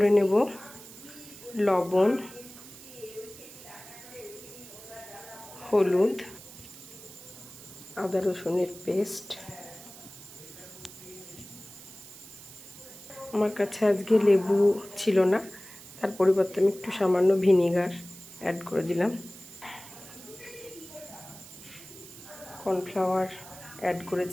নেব লবণ, হলুদ, আদা রসুনের পেস্ট। আমার কাছে আজকে লেবু ছিল না, তার পরিবর্তে আমি একটু সামান্য ভিনেগার অ্যাড করে দিলাম। কর্নফ্লাওয়ার অ্যাড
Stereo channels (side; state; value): right; noise; hiss, 17 dB below the sound